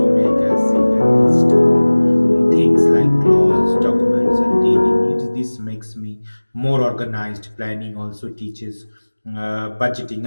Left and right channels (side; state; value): both; inverted; correlation -1.00